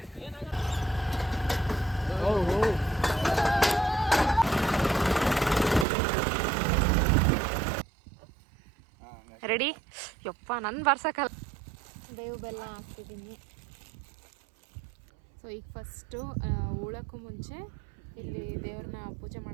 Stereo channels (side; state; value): left; drops out; at 5.9 s